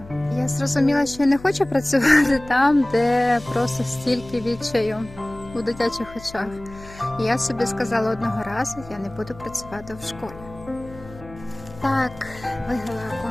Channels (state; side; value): noise; left; hum, 18 dB below the sound